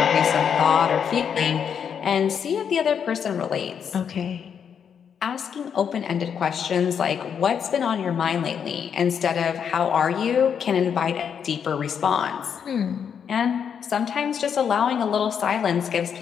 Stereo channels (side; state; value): right; quieter; 7.5 dB